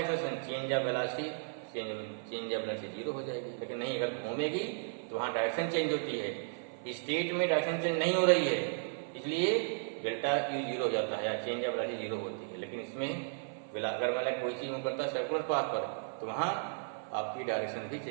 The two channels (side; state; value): left; silent; 55 dB below the other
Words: acceleration, change of velocity, change of velocity zero हो जाएगी। लेकिन नहीं, अगर घूमेगी तो वहां डायरेक्शन चेंज होती है, स्टेट में डायरेक्शन चेंज नहीं हो रही है, इसलिए डेल्टा यू जीरो हो जाता है या चेंज ऑफ वेलोसिटी जीरो होती है। लेकिन इसमें अगर मतलब कोई चीज मूव करता है सर्कुलर पाथ पर तो वहां आपकी डायरेक्शन भी